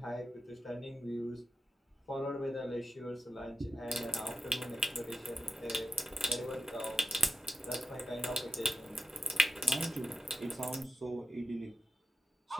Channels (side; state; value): both; normal; correlation 0.91